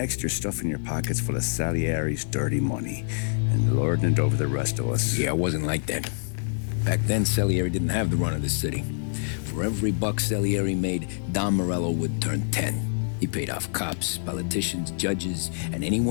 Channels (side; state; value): right; silent; 61 dB below the other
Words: you're stuffing your pockets full of Salieri's dirty money and lording it over the rest of us. Yeah, it wasn't like that. Back then, Salieri didn't have the run of the city. For every buck Salieri made, Don Morello would turn 10. He paid off cops, politicians, judges, and